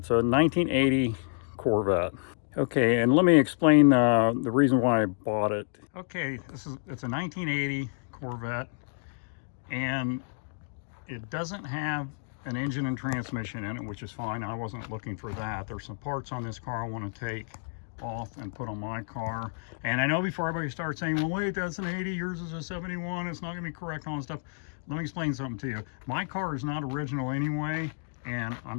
a 1980 Corvette. Okay, and let me explain the reason why I bought it. Okay, it's a 1980 Corvette, and it doesn't have an engine and transmission in it, which is fine. I wasn't looking for that. There's some parts on this car I want to take off and put on my car. And I know before everybody starts saying, well, wait, that's an 80, yours is a 71, it's not gonna be correct on stuff. Let me explain something to you. My car is not original anyway, and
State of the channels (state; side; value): silent; right; digital silence